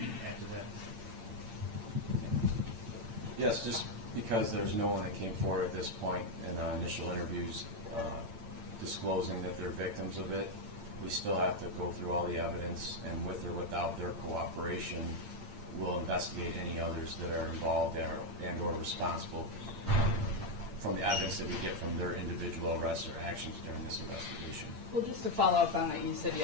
to add to that? Yes, just because there's no one that came forward at this point in initial interviews disclosing that they're victims of it, we still have to go through all the evidence, and with or without their cooperation, we'll investigate any others that are involved and or responsible from the evidence that we get from their individual arrests or actions during this investigation. Well, just to follow up on that, you said you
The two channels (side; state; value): left; late; 8.8 ms